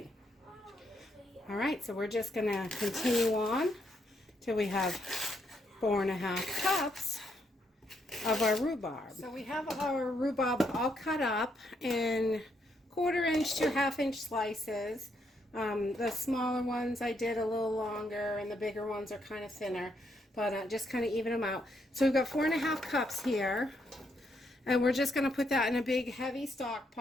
All right, so we're just going to continue on till we have 4.5 cups of our rhubarb. So we have our rhubarb all cut up in 1/4-inch to 1/2-inch slices. The smaller ones I did a little longer, and the bigger ones are kind of thinner, but just kind of even them out. So we've got 4.5 cups here, and we're just going to put that in a big heavy stock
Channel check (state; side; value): normal; both; correlation 0.76